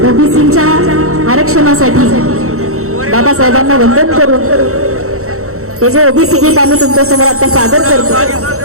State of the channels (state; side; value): late; left; 0.64 ms